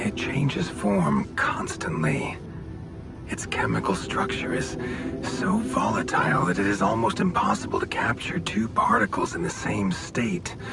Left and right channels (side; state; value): both; identical; correlation 1.00